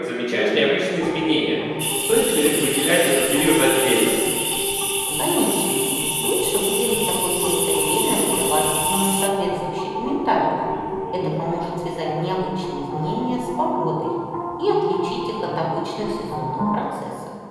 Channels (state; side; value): identical; both; correlation 1.00